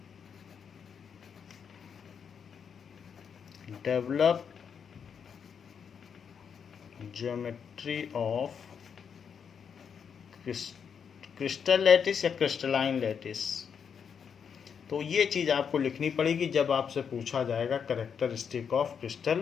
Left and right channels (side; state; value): right; quieter; 7.0 dB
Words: develop geometry of crystal lattice या crystalline lattice. तो ये चीज़ आपको लिखनी पड़ेगी जब आपसे पूछा जाएगा characteristic of crystal